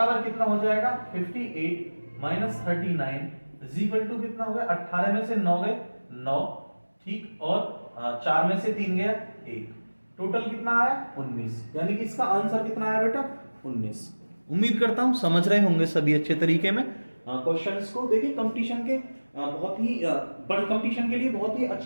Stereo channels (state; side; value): inverted; both; correlation -1.00